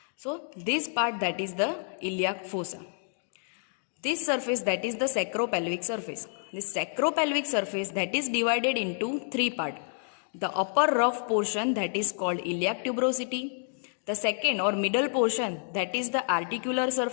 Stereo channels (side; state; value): right; silent; 58 dB below the other